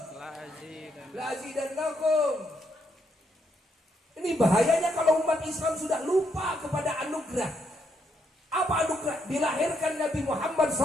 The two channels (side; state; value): both; normal; correlation 0.76